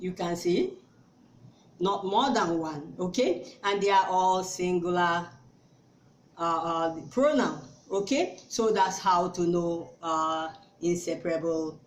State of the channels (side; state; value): both; identical; correlation 1.00